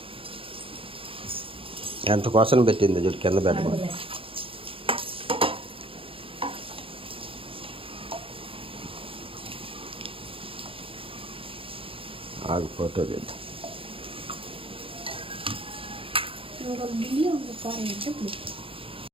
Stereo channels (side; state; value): left; late; 0.26 ms